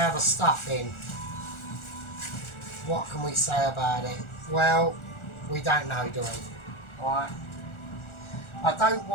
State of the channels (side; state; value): right; late; 1.4 ms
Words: the stuffing. What can we say about it? Well, we don't know, do we? Right. I don't